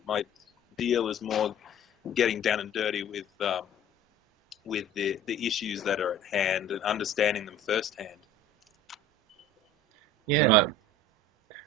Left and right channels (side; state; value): both; normal; correlation 0.44